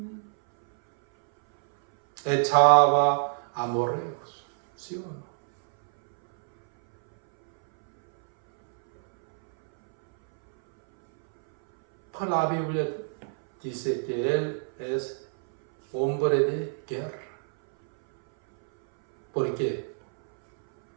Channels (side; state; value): left; silent; 61 dB below the other